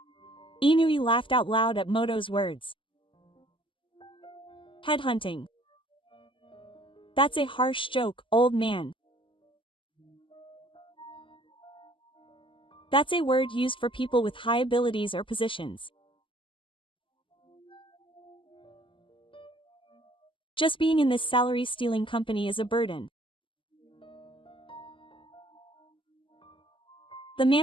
Inui laughed out loud at Moto's words. Headhunting. That's a harsh joke, old man. That's a word used for people with high abilities or positions. Just being in this salary-stealing company is a burden. The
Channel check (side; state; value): right; late; 0.25 ms